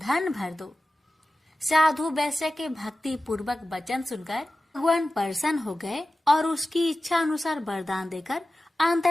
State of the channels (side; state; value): both; normal; correlation 0.95